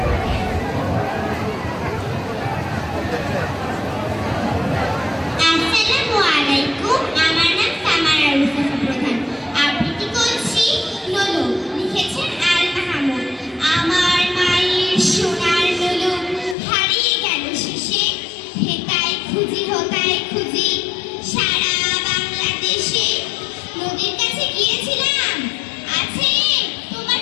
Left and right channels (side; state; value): right; drops out; at 16.6 s